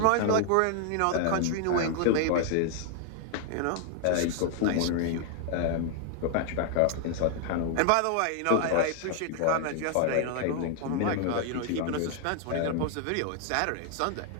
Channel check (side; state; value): both; different; correlation 0.00